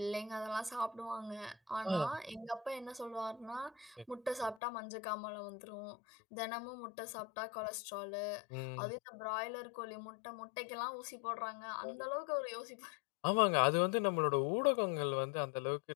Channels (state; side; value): drops out; right; at 4.6 s